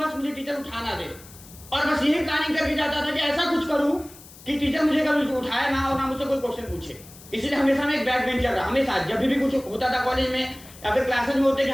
मुझे टीचर उठाना दे, और बस यही प्लानिंग करके जाता था कि ऐसा कुछ करूं कि टीचर मुझे कभी उठाए ना और ना मुझसे कोई क्वेश्चन पूछे। इसलिए हमेशा मैं एक बैक बेंचर रहा। हमेशा जब भी कुछ होता था कॉलेज में या फिर क्लासेस में होते कि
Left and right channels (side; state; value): left; noise; hiss, 20 dB below the sound